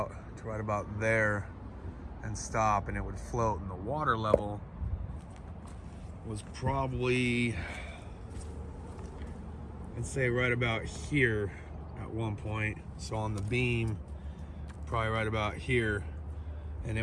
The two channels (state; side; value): identical; both; correlation 1.00